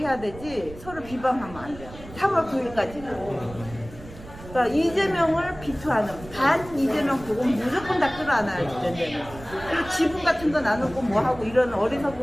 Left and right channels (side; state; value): right; noise; rumble, 16 dB below the sound